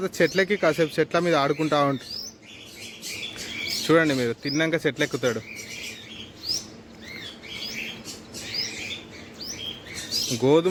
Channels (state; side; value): identical; both; correlation 1.00